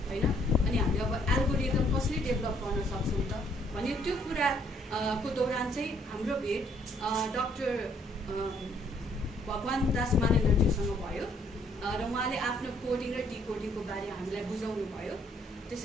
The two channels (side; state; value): both; normal; correlation 0.66